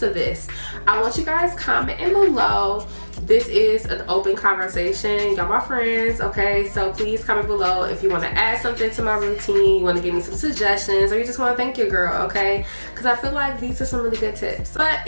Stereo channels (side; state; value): both; inverted; correlation -1.00